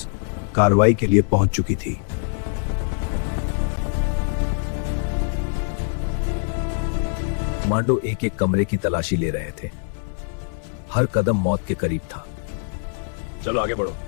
कार्रवाई के लिए पहुंच चुकी थी। कमांडो एक एक कमरे की तलाशी ले रहे थे। हर कदम मौत के करीब था। चलो आगे बढ़ो।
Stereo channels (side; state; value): right; silent; 63 dB below the other